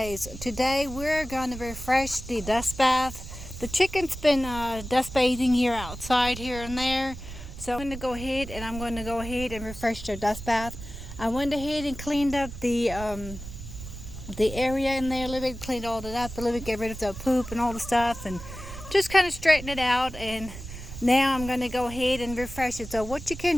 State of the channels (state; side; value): noise; right; rumble, 11 dB below the sound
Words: Today we're going to refresh the dust bath. The chicken's been dust bathing here outside here and there. So I'm going to go ahead and refresh their dust bath. I went ahead and cleaned up the area in there a little bit, cleaned all that up a little bit, get rid of the poop and all the stuff and just kind of straighten it out. And now I'm going to go ahead and refresh it. So what you can